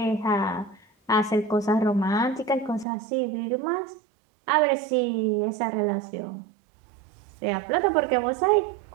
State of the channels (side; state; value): left; drops out; at 2.9 s